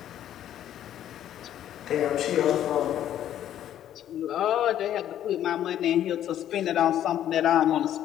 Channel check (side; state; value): right; quieter; 11.2 dB